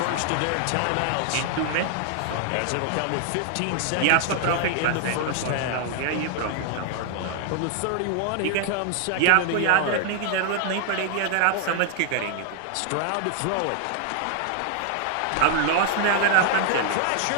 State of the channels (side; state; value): both; different; correlation 0.00